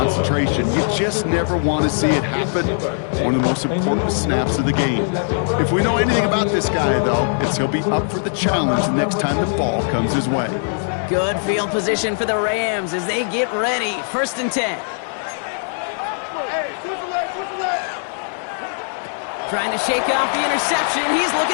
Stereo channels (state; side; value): silent; right; 66 dB below the other